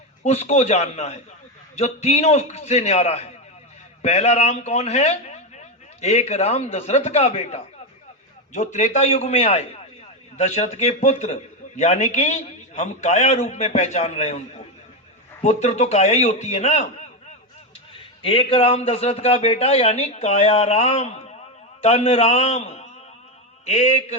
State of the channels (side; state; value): both; normal; correlation 0.10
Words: उसको जानना है जो तीनों से न्यारा है। पहला राम कौन है? एक राम दशरथ का बेटा, जो त्रेता युग में आए, दशरथ के पुत्र, यानी कि हम काया रूप में पहचान रहे हैं उनको। पुत्र तो काया ही होती है ना। एक राम दशरथ का बेटा यानी काया राम, तन राम। एक